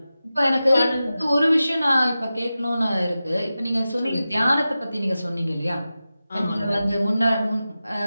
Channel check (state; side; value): inverted; both; correlation -0.94